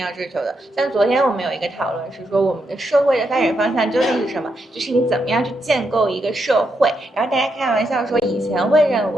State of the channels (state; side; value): normal; both; correlation 0.81